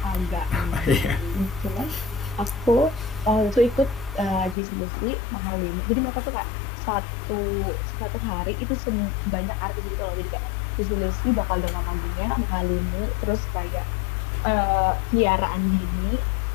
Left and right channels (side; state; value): right; drops out; at 4.5 s